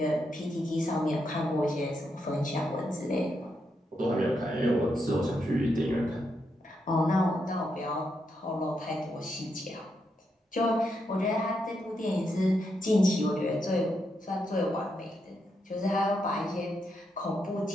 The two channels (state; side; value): normal; both; correlation 0.82